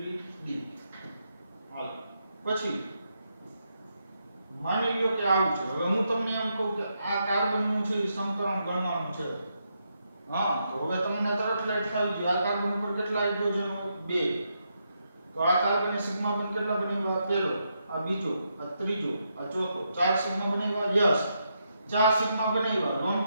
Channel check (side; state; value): both; inverted; correlation -0.81